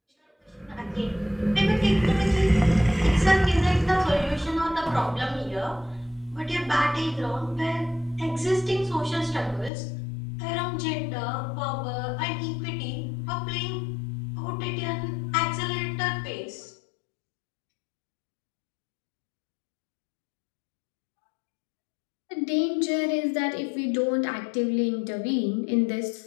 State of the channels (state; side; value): drops out; right; at 9.7 s